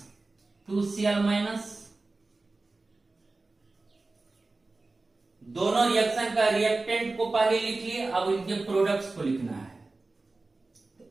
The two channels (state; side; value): quieter; left; 3.4 dB